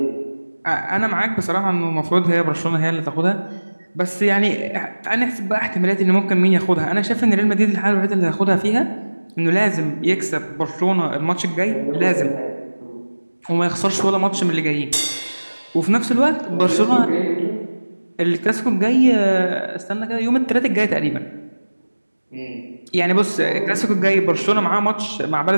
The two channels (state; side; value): inverted; both; correlation -1.00